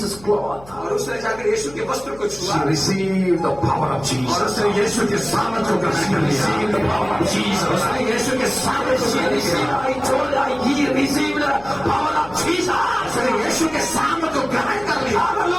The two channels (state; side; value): noise; left; hum, 21 dB below the sound